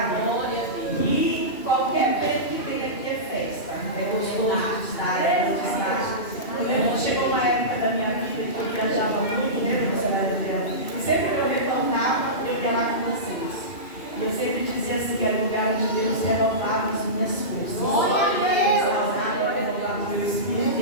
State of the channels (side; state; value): right; late; 2.6 ms